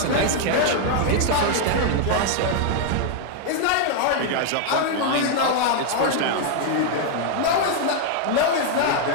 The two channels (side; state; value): both; different; correlation 0.00